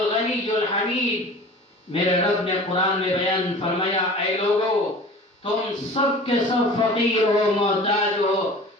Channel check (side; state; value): both; normal; correlation 0.41